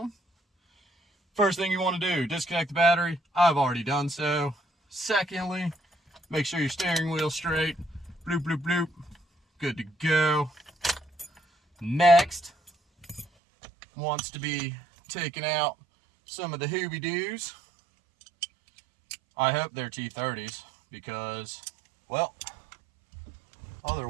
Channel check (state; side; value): drops out; left; at 13.2 s